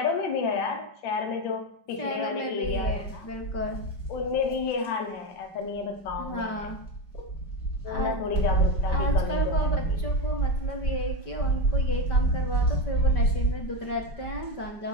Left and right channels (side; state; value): right; late; 5.2 ms